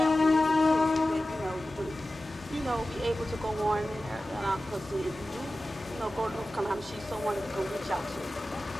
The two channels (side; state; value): both; normal; correlation 0.95